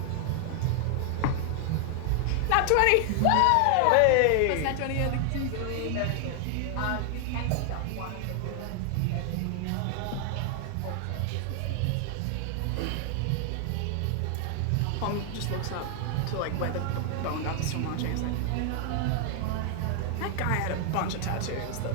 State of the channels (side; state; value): both; different; correlation 0.00